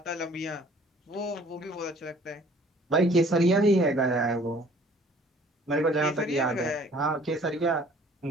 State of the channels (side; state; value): both; normal; correlation 0.55